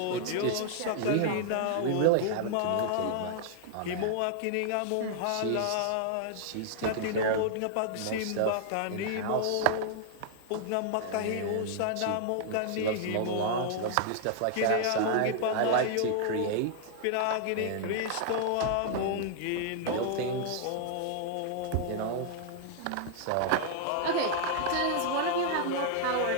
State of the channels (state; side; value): different; both; correlation -0.01